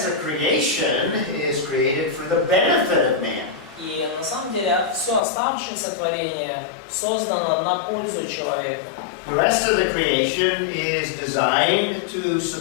of creation is created for the benefit of man. И на самом деле все оставшееся творение создано на пользу человека. The rest of the creation is designed to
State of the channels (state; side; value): drops out; right; at 5.2 s